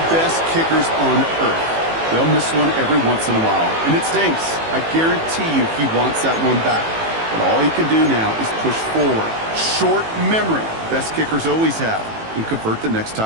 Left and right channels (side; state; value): left; late; 18 ms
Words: best kickers on earth, they'll miss one every once in a while, and it stinks. I guarantee you he wants that one back. But all he can do now is push forward. Short memory, best kickers always have, and convert the next